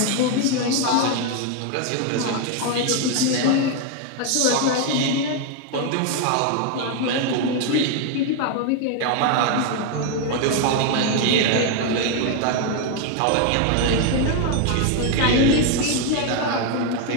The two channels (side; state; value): both; different; correlation 0.01